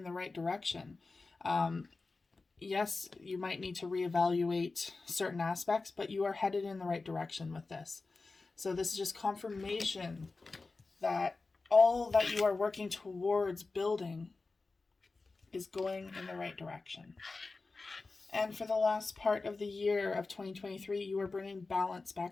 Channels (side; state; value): right; quieter; 3.8 dB